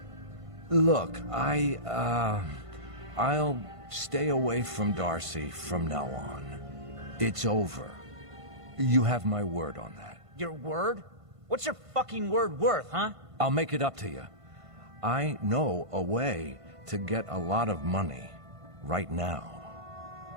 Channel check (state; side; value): late; left; 1.5 ms